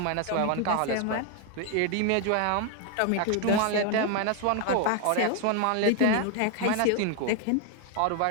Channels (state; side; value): different; both; correlation 0.01